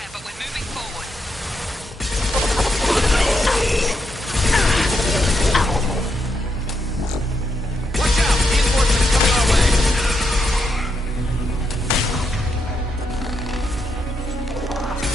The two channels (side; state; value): both; normal; correlation 0.81